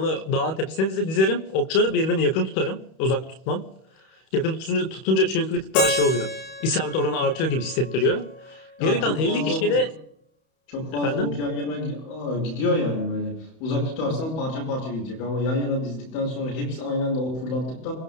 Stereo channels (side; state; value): right; late; 31 ms